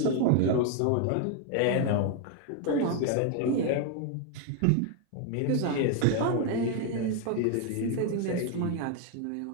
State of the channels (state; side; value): different; both; correlation 0.01